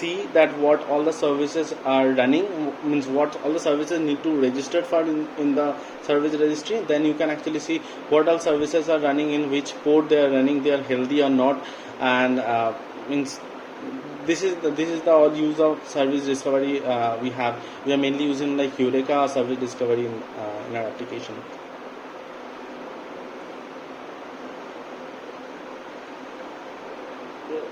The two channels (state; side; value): identical; both; correlation 1.00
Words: that what all the services are running, means what all the services need to register for in the service registry. Then you can actually see what all services are running, in which port they are running, they are healthy or not. And means this is the all use of service discovery. We are mainly using like Eureka service discovery in our application.